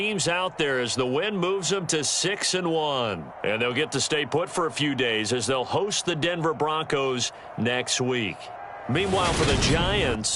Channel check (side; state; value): both; identical; correlation 1.00